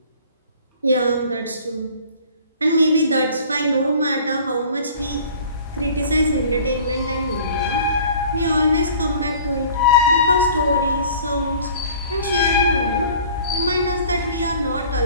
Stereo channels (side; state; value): both; inverted; correlation -0.48